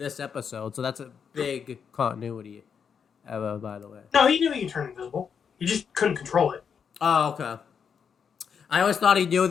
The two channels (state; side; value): quieter; right; 6.8 dB